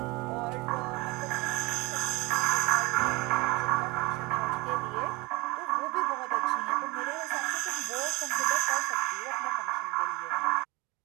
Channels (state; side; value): quieter; left; 23.9 dB